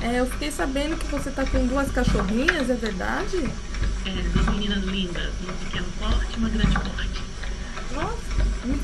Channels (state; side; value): identical; both; correlation 1.00